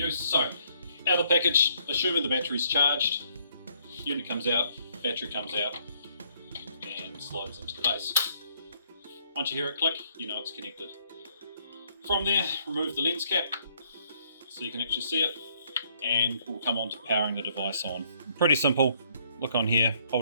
So out of the package, assuming the battery's charged, unit comes out, battery comes out, and slides into the base. Once you hear it click, you know it's connected. From there, remove the lens cap so you can actually see it, and we'll come on to powering the device on. Pretty simple. Look on here,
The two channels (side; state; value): both; inverted; correlation -0.67